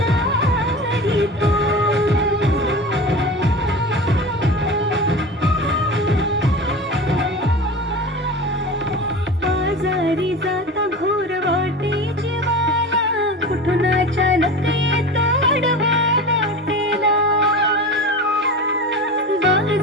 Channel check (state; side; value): normal; both; correlation 0.31